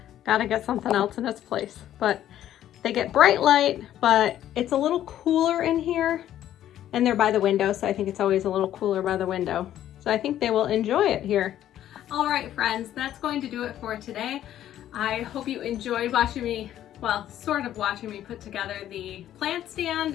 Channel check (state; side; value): quieter; right; 11.9 dB